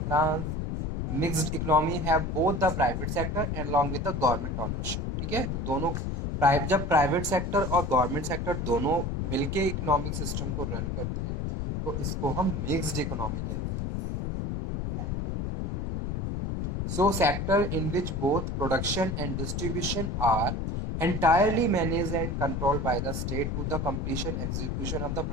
France। Mixed economy have both the private sector along with the government ownership, ठीक है। तो दोनों जब private sector और government sector दोनों मिलके economic system को रन करते हैं तो इसको हम मिक्स्ड इकोनॉमी कहते हैं। So sector in which both production and distribution are entirely managed and controlled by the state to the completion execution of the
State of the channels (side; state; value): left; noise; rumble, 2 dB below the sound